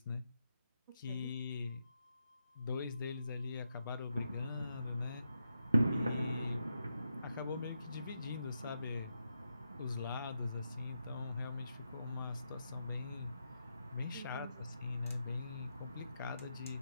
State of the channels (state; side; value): inverted; both; correlation -0.84